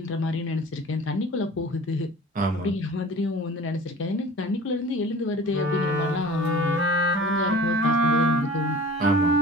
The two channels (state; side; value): normal; both; correlation 0.42